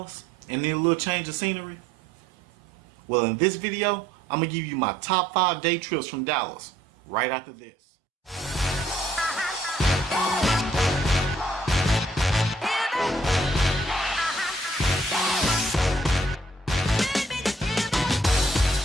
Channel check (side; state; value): both; normal; correlation 0.65